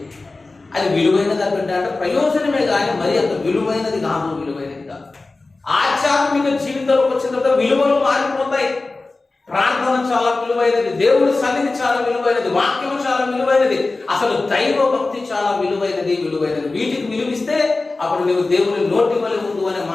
అది విలువైనది అంటే ప్రయోజనమే కానీ మరి అంత విలువైనది కాదు. ఆధ్యాత్మిక జీవితంలోకి వచ్చిన తర్వాత విలువలు మారిపోతాయి. ప్రార్థన చాలా విలువైనది, దేవుడి సన్నిధి చాలా విలువైనది, వాక్యం చాలా విలువైనది, అసలు దైవ భక్తి చాలా విలువైనది. వీటికి విలువిస్తే అప్పుడు నువ్వు దేవుని నోటి వలె ఉండు అనే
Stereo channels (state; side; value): quieter; right; 3.4 dB